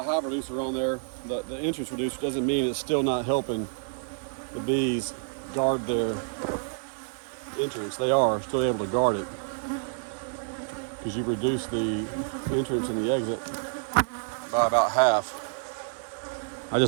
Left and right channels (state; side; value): silent; left; digital silence